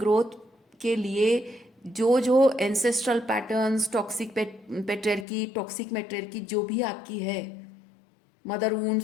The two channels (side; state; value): right; drops out; at 5.2 s